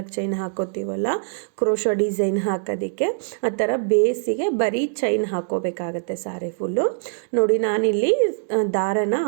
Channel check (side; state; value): left; silent; digital silence